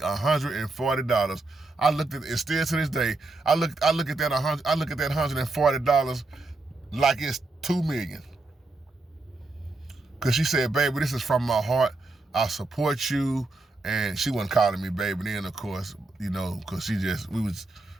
I looked at it, still to this day, I look at that $140 like it's $2 million. Cause she said, baby, this is from my heart. I support you. And she wasn't calling me baby then, of course, you know, cause we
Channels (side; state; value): left; quieter; 3.2 dB